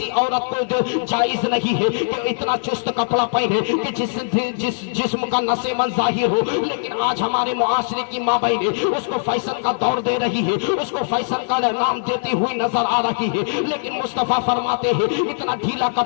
عورت کو جو جائز نہیں ہے کہ اتنا چست کپڑا پہنے کہ جس جسم کا نس من ظاہر ہو، لیکن آج ہمارے معاشرے کی ماں بہنیں اس کو فیشن کا دور دے رہی ہے، اس کو فیشن کا نام دیتی ہوئی نظر آ رہی ہے۔ لیکن مصطفیٰ فرماتے ہیں اتنا ڈھیلا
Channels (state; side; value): silent; right; 58 dB below the other